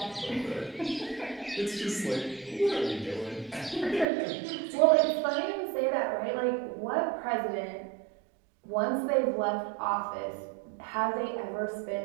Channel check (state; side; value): drops out; left; at 4.0 s